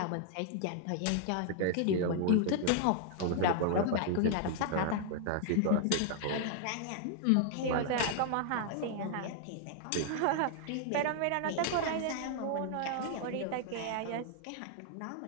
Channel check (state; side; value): different; both; correlation 0.00